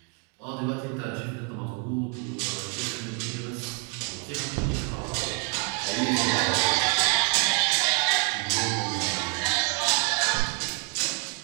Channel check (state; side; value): quieter; left; 38.4 dB